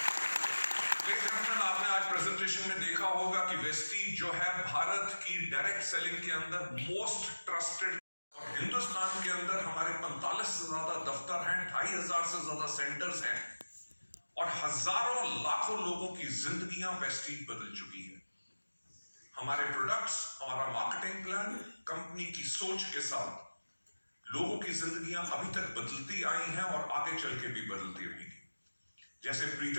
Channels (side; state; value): both; inverted; correlation -1.00